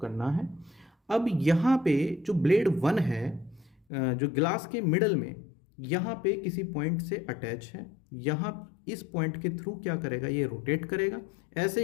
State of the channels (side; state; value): right; drops out; at 3.8 s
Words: करना है। अब यहाँ पे जो ब्लेड 1 है, जो ग्लास के मिडल में यहाँ पे किसी पॉइंट से अटैच है। यहाँ इस पॉइंट के थ्रू क्या करेगा, ये रोटेट करेगा।